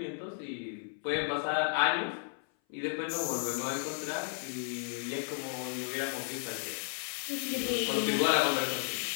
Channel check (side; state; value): right; silent; 55 dB below the other